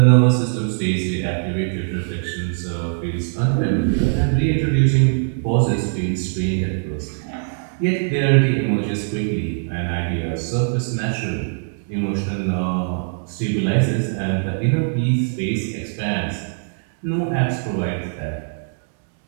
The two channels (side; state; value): left; silent; 65 dB below the other